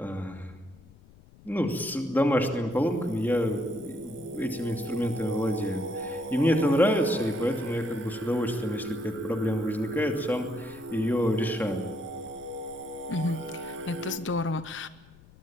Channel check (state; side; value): noise; left; rumble, 24 dB below the sound